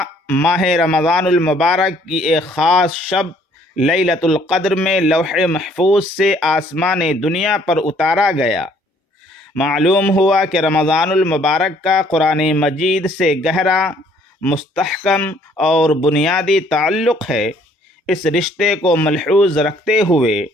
ماہ رمضان المبارک کی ایک خاص شب لیلۃ القدر میں لوح محفوظ سے آسمان دنیا پر اتارا گیا۔ معلوم ہوا کہ رمضان المبارک کا قرآن مجید سے گہرا، مستحکم اور بنیادی تعلق ہے۔ اس رشتے کو ملحوظ رکھتے ہوئے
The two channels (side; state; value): both; normal; correlation 0.62